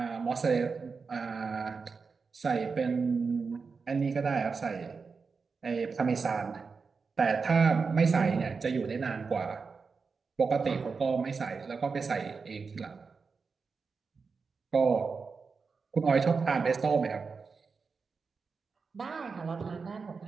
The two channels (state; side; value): quieter; left; 4.9 dB